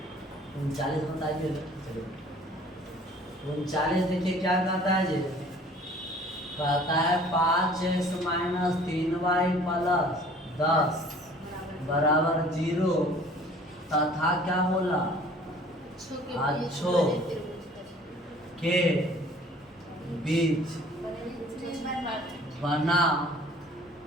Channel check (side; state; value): both; normal; correlation 0.51